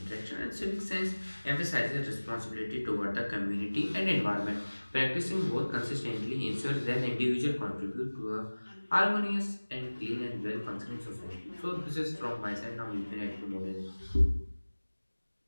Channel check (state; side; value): inverted; both; correlation -1.00